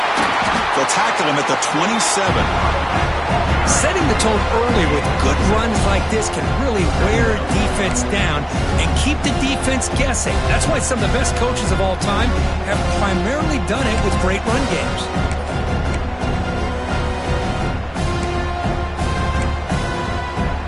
They'll tackle him at the 27. Setting the tone early with good runs like this can really wear a defense down and keep the defense guessing. That's why some of the best coaches of all time have primarily done it with great run games.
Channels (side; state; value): both; identical; correlation 1.00